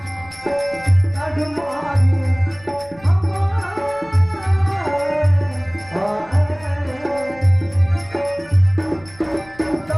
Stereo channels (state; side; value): noise; left; rumble, 25 dB below the sound